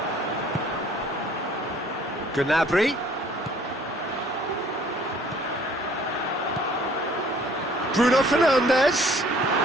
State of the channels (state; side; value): normal; both; correlation 0.56